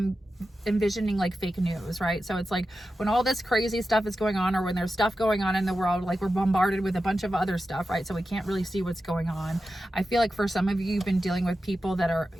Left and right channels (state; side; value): normal; both; correlation 0.92